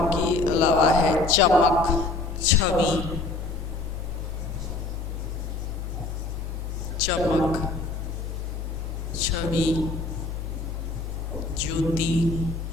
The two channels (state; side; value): quieter; right; 3.4 dB